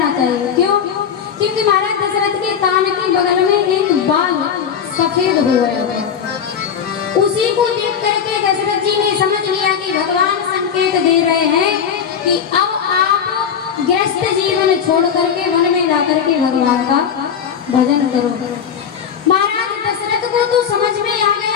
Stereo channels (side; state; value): right; quieter; 7.7 dB